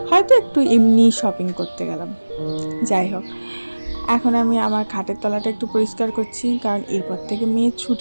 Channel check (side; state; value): both; inverted; correlation -1.00